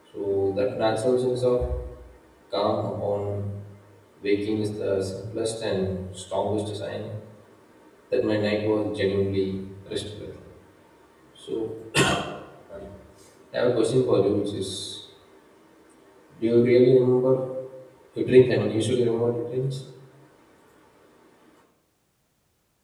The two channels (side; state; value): both; identical; correlation 1.00